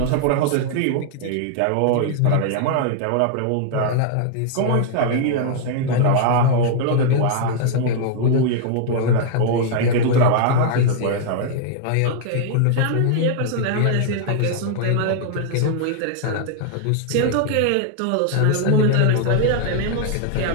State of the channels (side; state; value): both; different; correlation 0.00